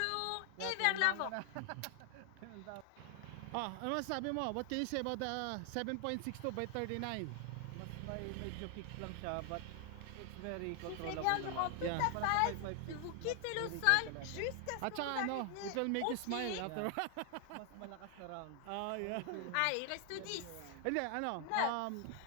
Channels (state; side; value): different; both; correlation 0.00